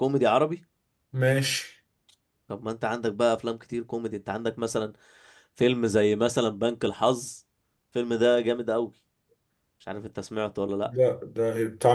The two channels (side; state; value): both; identical; correlation 1.00